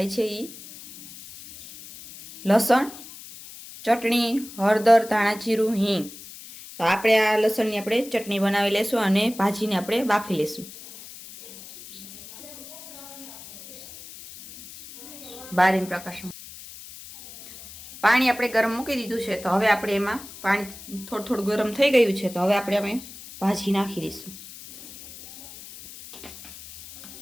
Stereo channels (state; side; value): noise; left; hiss, 16 dB below the sound